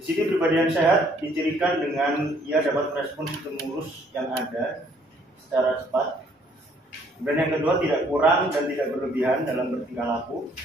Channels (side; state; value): both; normal; correlation 0.63